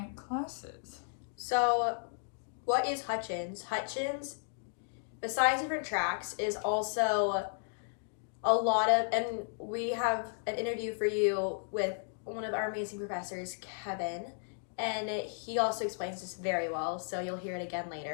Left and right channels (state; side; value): silent; right; digital silence